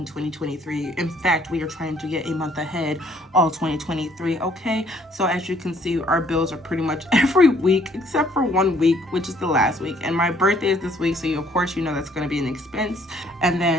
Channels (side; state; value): both; normal; correlation 0.63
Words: 2023. In fact, we are trying to get a month ahead all 2023, okay? So as you can see, our bills are pretty much every week except for 1 week, which is the last week. And my birthday is this week, so of course you know that's going to be an expense. And